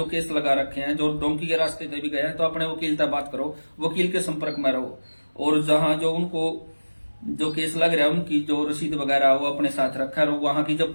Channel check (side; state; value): both; inverted; correlation -1.00